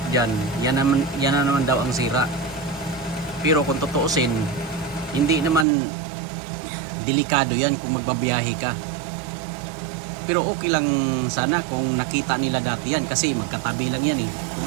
dyan, yan na naman daw ang sira. Pero kung tutuusin, hindi naman delikado yan kung magbabiyahe ka. Pero okay lang sana kung nakita nila dati yan kasi magkatabi lang yan eh.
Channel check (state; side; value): drops out; left; at 5.7 s